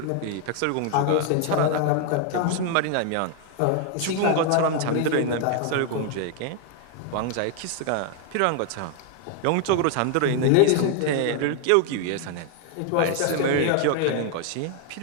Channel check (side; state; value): both; different; correlation 0.00